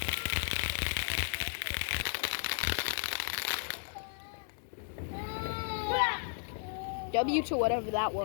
W to whatever that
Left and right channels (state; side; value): silent; right; digital silence